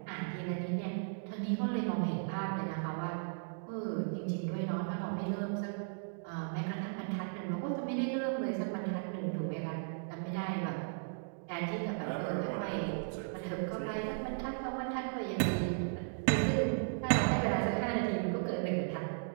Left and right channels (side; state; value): left; silent; digital silence